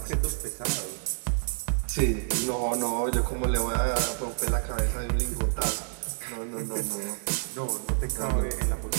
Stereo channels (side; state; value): left; silent; digital silence